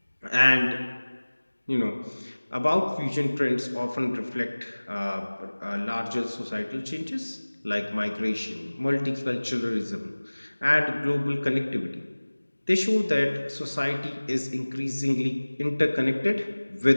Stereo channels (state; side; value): inverted; both; correlation -1.00